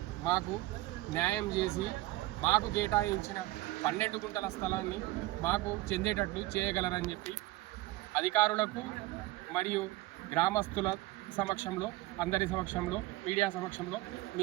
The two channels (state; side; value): quieter; left; 18.3 dB